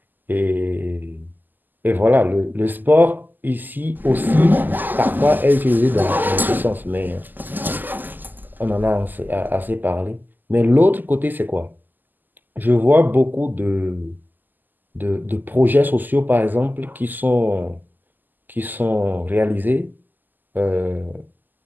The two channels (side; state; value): left; late; 0.087 ms